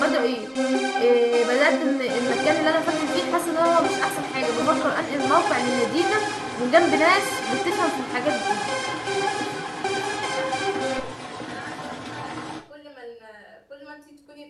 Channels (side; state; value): both; identical; correlation 1.00